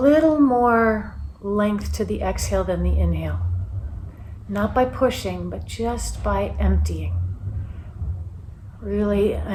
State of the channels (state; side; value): identical; both; correlation 1.00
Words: more length to the exhale than the inhale. Not by pushing, but just by emptying. Really